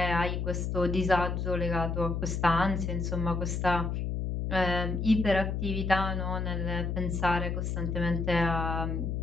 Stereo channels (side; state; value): left; noise; hum, 1 dB below the sound